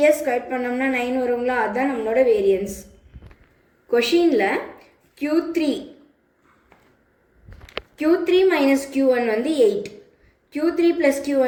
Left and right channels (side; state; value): both; identical; correlation 1.00